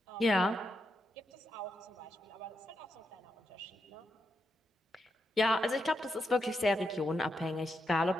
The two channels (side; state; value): both; normal; correlation 0.84